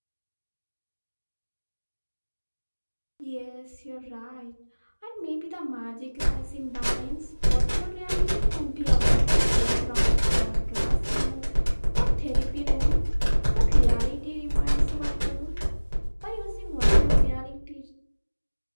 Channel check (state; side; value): inverted; both; correlation -1.00